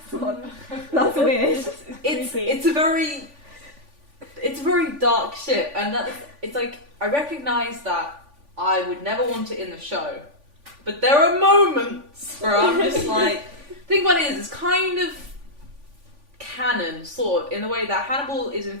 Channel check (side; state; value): left; late; 3.5 ms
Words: weird. it's a very dark ship. And it's like, I recognise that I would never want it in the show. But there are moments where I'm just like... think what it is, it's kind of canon, sort of, in the way that Hannibal is